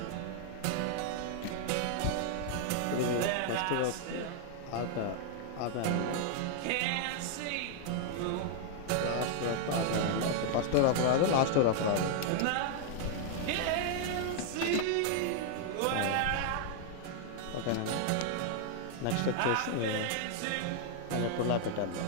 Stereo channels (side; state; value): both; different; correlation 0.00